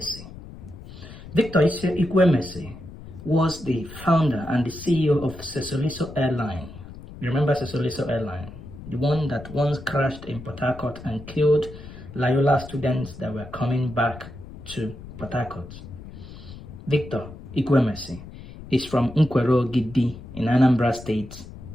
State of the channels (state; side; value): noise; left; rumble, 15 dB below the sound